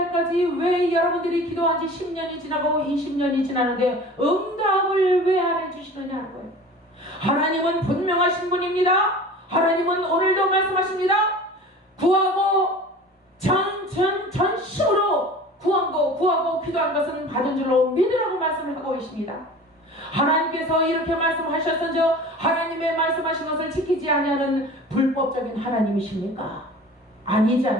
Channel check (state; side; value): normal; both; correlation 0.40